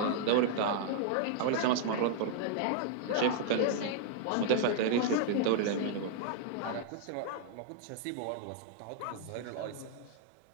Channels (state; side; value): different; both; correlation -0.01